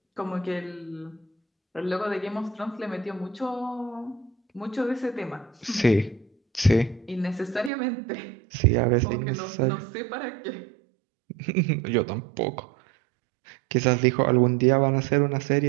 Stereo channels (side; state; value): left; drops out; at 7.7 s